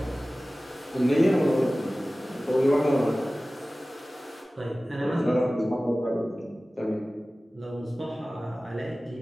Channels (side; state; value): both; normal; correlation 0.97